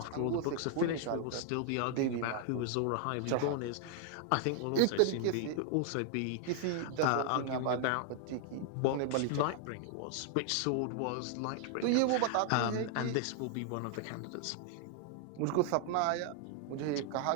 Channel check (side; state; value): both; different; correlation 0.00